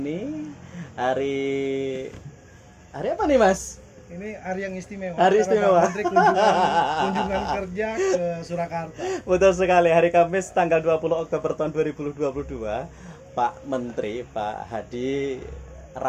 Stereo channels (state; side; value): identical; both; correlation 1.00